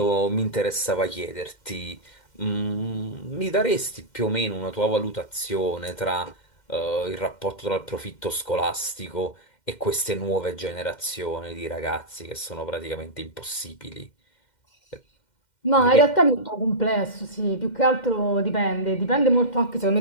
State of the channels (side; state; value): right; late; 2.1 ms